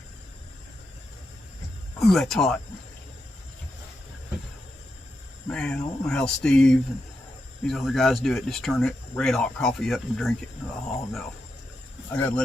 Ooh, that's hot. Man, I don't know how Steve and these other guys do it. Just turn it red hot coffee up and drink it. Oh no. I gotta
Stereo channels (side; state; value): both; normal; correlation 0.86